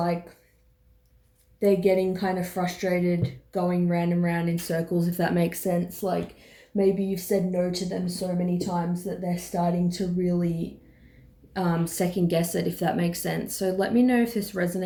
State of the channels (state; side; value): identical; both; correlation 1.00